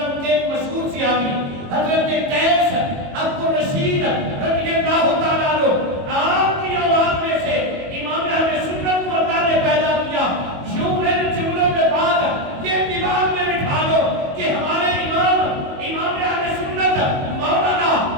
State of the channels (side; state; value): left; late; 22 ms